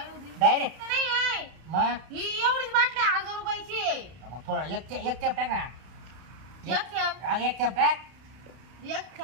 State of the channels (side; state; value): left; late; 32 ms